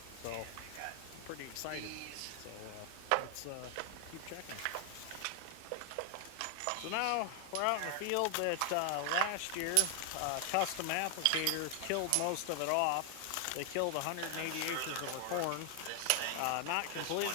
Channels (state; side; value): different; both; correlation 0.00